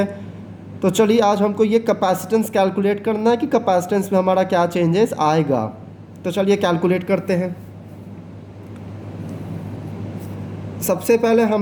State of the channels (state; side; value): identical; both; correlation 1.00